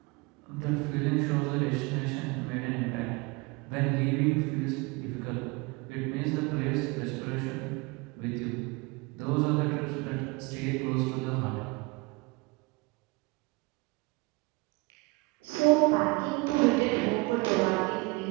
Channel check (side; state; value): left; quieter; 26.1 dB